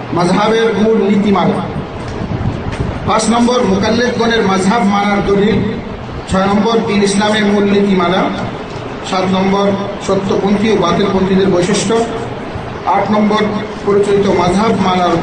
মাযহাবের মূল নীতিমালা। 5 নম্বর মুকাল্লিফগণের মাযহাব মানার দলিল। 6 নম্বর দ্বীন ইসলামের মূল নীতিমালা। 7 নম্বর সত্যপন্থী ও বাতিলপন্থীদের বৈশিষ্ট্য। 8 নম্বর পরিচালিত মাযহাব মানার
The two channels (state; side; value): identical; both; correlation 1.00